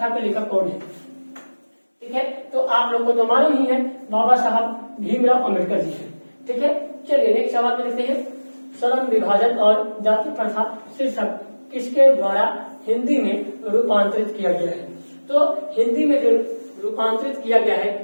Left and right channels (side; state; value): both; inverted; correlation -1.00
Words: के लेखक कौन है? ठीक है, तो आप लोग को तो मालूम ही है, बाबा साहब भीमराव अंबेडकर जी है, ठीक है। चलिए नेक्स्ट सवाल में देखते हैं। श्रम विभाजन और जाति प्रथा शीर्षक किसके द्वारा हिंदी में रूपांतरित किया गया है? तो हिंदी में जो रूपांतरित किया गया है